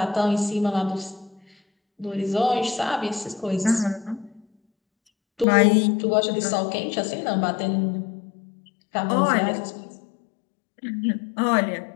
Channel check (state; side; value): drops out; right; at 5.5 s